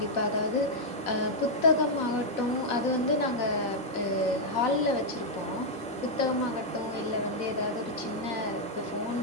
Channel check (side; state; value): both; normal; correlation -0.03